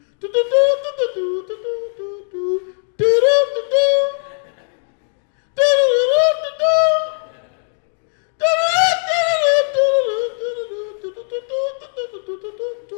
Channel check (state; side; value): silent; right; 66 dB below the other